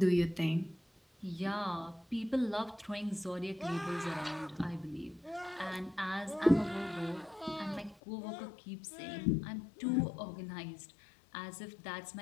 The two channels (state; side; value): drops out; right; at 8.0 s